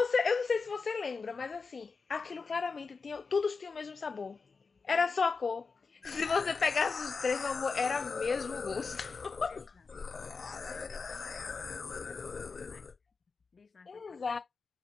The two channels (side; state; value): right; quieter; 4.7 dB